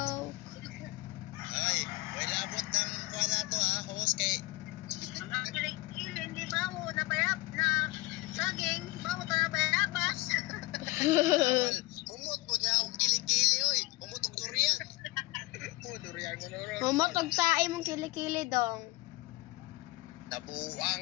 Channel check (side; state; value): right; quieter; 20.9 dB